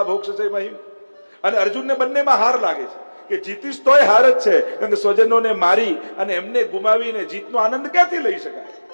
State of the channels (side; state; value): both; inverted; correlation -1.00